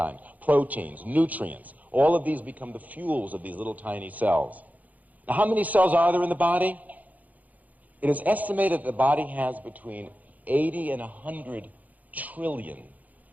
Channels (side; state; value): left; late; 0.078 ms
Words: proteins, nutrients. All of these become the fuels of these little tiny cells. Now, how many cells are there in the body? It is estimated that the body has between 80 and 100 trillion